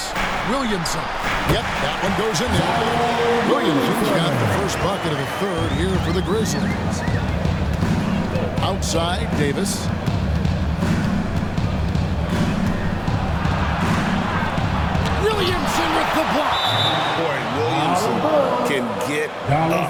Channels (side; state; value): both; identical; correlation 1.00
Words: Williamson. Yep, that one goes in there. Williamson's got the first bucket of the third here for the Grizzlies. Outside, Davis. Williamson with the block. Boy, Williamson can get up,